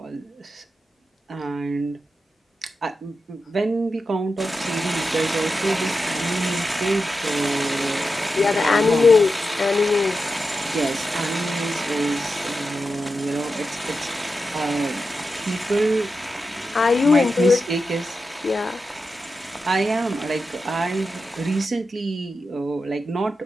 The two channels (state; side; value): normal; both; correlation 0.90